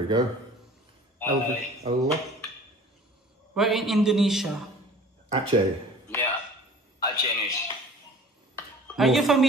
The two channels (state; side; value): normal; both; correlation 0.46